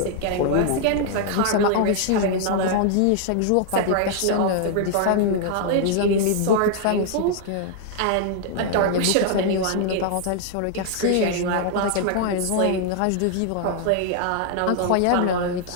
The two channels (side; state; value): both; different; correlation 0.00